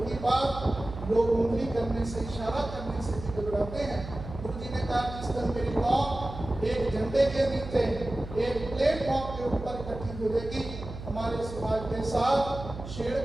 की बात, लोग उंगली करने से, इशारा करने से भी घबराते हैं। गुरु जी ने कहा, जिस दिन मेरी कौम एक झंडे के नीचे एक प्लेटफॉर्म के ऊपर इकट्ठी होगी, हमारे समाज के साथ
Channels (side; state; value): right; noise; hum, 10 dB below the sound